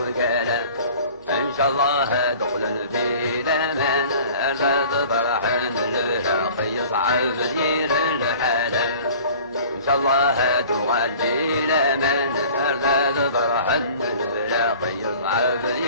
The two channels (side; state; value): both; inverted; correlation -0.46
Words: كان إن شاء الله دخل في الأمان أرزاد فرحان الأخي يصعب دير الحالة إن شاء الله تغلي الأمان أرزاد فرحان الأخي يصعب